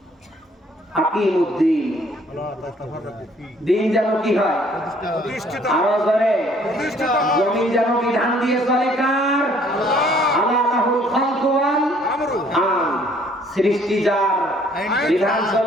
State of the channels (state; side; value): normal; both; correlation 0.60